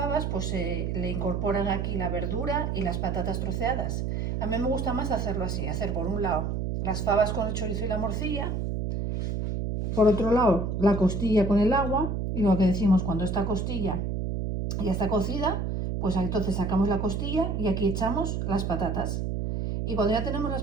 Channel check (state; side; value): noise; right; hum, 1 dB below the sound